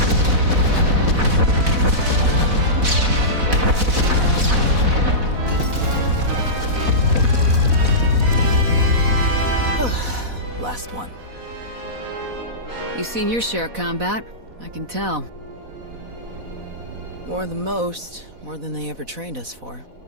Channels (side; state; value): left; late; 4.1 ms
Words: Last one. You've seen your share of combat, I can tell. More than most, more than they ever trained us for.